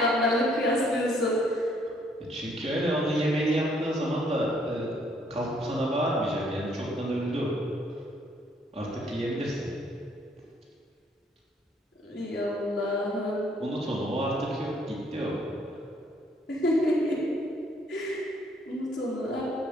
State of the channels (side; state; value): both; normal; correlation 0.66